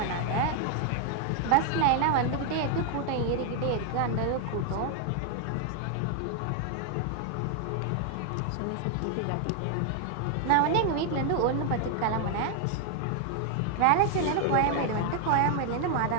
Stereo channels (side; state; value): both; different; correlation 0.00